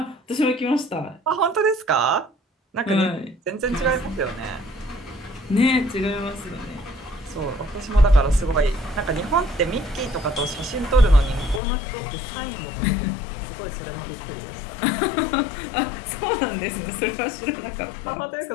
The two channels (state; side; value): drops out; right; at 11.6 s